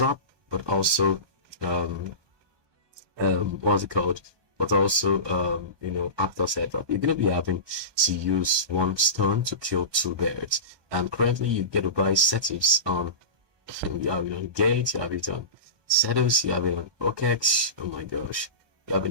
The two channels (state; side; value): late; left; 1.2 ms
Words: but also what's it called? But also, after setup, you're gonna be having to use one stone to kill 2 birds. And currently, you get to buy settings on. You have it on Gate, you have it on Setos, you have it on OKEX. Oh my gosh, you have